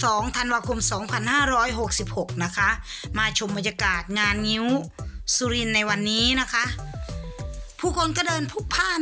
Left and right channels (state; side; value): identical; both; correlation 1.00